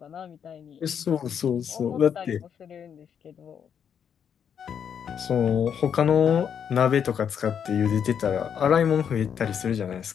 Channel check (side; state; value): right; quieter; 7.9 dB